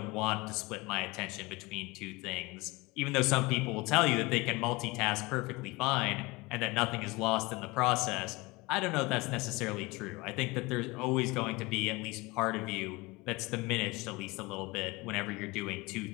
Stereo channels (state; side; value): quieter; right; 23.6 dB